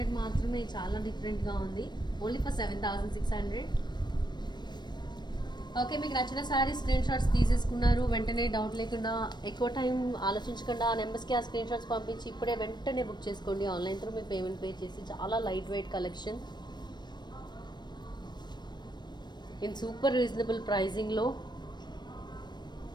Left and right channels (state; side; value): late; right; 0.21 ms